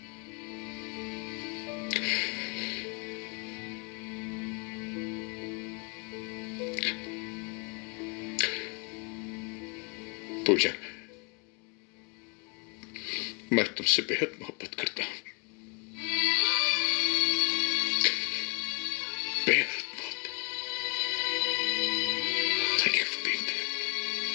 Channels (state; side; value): quieter; right; 34.6 dB